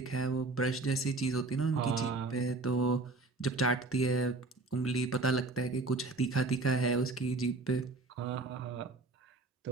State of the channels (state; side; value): quieter; left; 3.4 dB